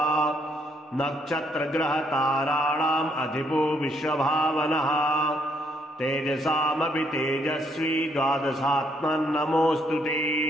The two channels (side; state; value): both; normal; correlation 0.71